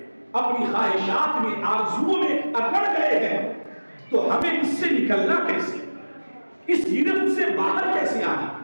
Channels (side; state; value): both; inverted; correlation -1.00